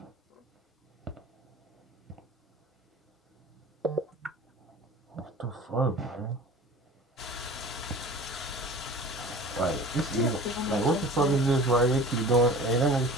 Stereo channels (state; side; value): normal; both; correlation 0.41